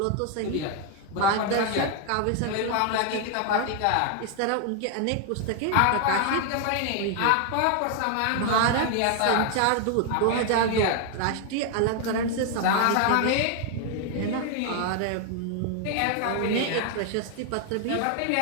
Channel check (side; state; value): both; different; correlation 0.00